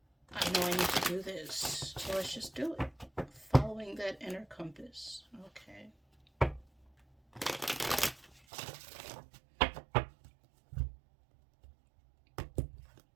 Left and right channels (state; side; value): drops out; left; at 8.4 s